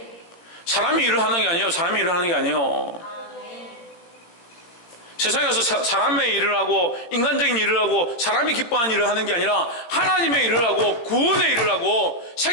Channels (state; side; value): late; right; 17 ms